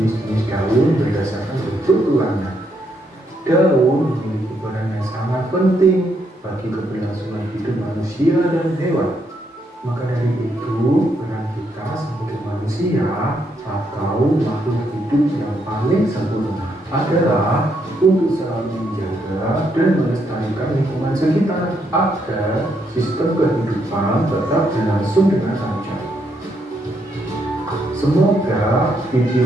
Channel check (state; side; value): normal; both; correlation 0.76